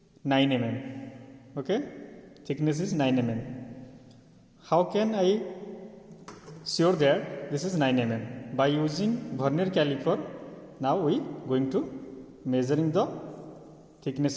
9 mm. Okay, thickness is 9 mm. How can I sure that this is 9 mm? By using vernier caliper, now we going to measuring the thickness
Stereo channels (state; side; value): identical; both; correlation 1.00